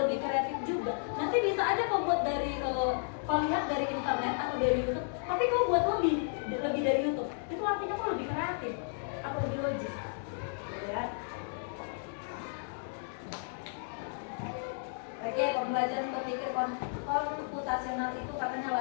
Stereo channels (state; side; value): silent; right; digital silence